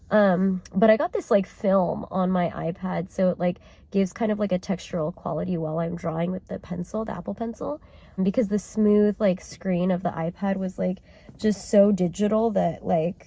But I got this like film on my iPad, so it like gives kind of like a textural quality while I'm drawing with the pencil, the Apple Pencil, because the smooth like screen of the iPad was like just so digital that like,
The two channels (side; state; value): both; identical; correlation 1.00